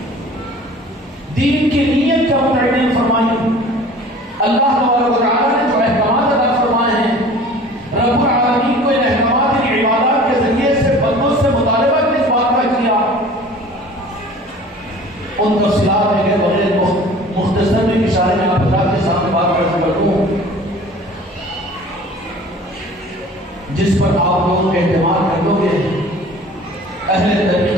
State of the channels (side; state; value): both; normal; correlation 0.45